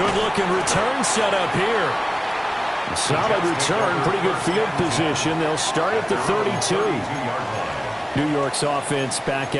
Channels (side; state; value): both; identical; correlation 1.00